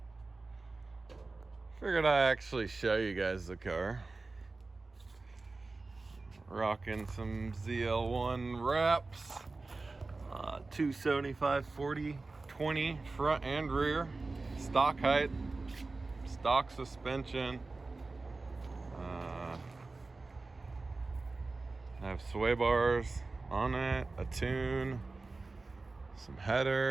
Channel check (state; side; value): quieter; left; 3.6 dB